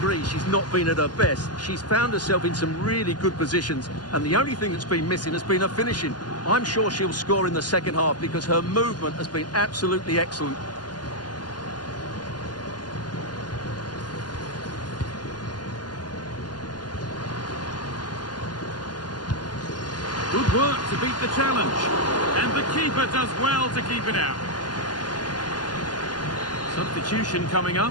she's not been at her best, she's found herself in some really good positions, and the only thing that's been missing has been her finishing. I'm sure she'll score in the second half because her movement has been absolutely excellent. Good work to beat the challenge, and the keeper does well to keep it out. Substitution coming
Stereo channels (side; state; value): right; late; 0.70 ms